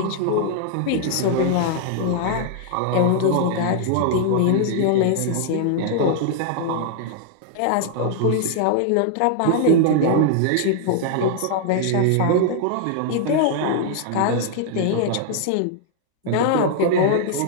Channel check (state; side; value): different; both; correlation -0.01